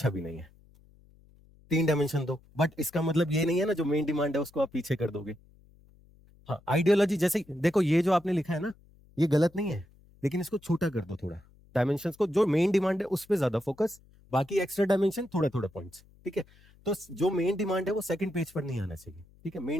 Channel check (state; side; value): noise; left; hum, 28 dB below the sound